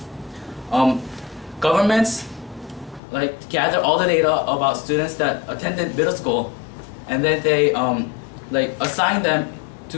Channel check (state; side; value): drops out; right; at 3.0 s